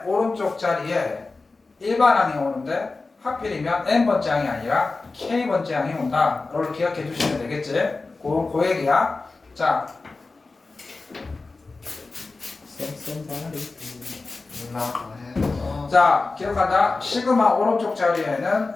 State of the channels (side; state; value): right; quieter; 3.7 dB